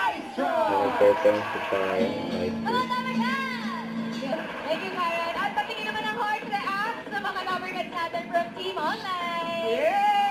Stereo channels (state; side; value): identical; both; correlation 1.00